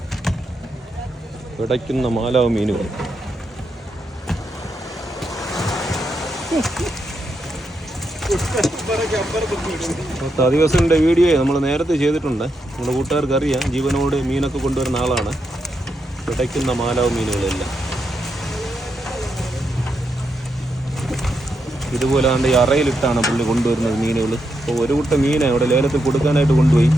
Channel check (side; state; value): both; normal; correlation 0.83